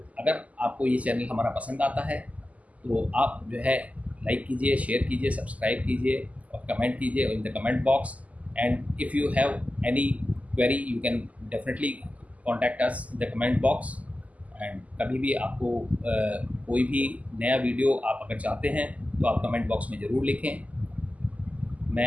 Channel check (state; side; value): late; left; 0.072 ms